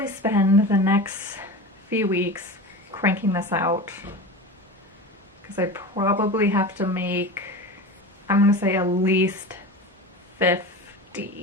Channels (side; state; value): both; normal; correlation 0.29